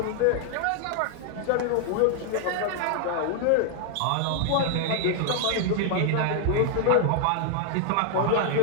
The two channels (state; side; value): different; both; correlation 0.00